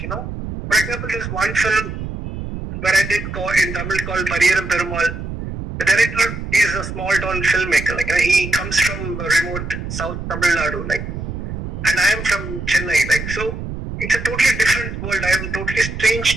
For example, there's one film where I did in Tamil called Pariyaram Perumal. The director is a small town filmmaker. He comes from remote South Tamil Nadu. And I am from Chennai. So it's a totally different world. I am totally strange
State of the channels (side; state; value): right; noise; rumble, 7 dB below the sound